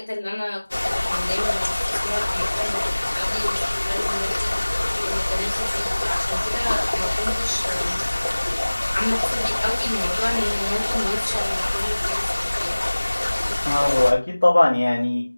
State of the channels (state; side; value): inverted; both; correlation -1.00